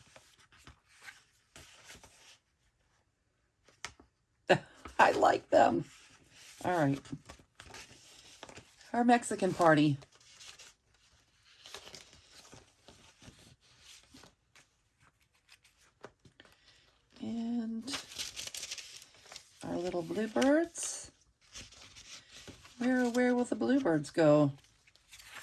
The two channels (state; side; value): identical; both; correlation 1.00